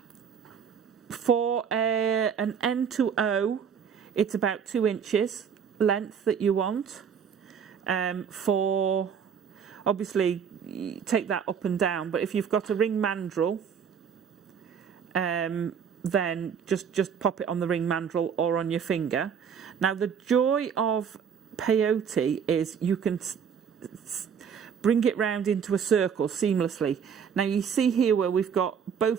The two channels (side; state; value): left; quieter; 7.3 dB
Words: For an N to O, it's about 2 inches length that you want. For, obviously, take that up and down, but if you've got a ring mandrel, then just pop it on the ring mandrel or on your finger. Now, the joy of peyote is you can bring it round into a circle seamlessly. Now, you see here where we've got